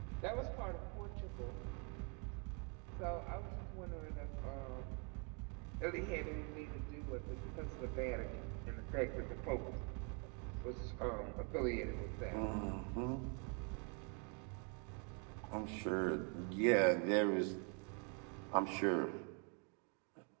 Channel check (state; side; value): quieter; left; 36.1 dB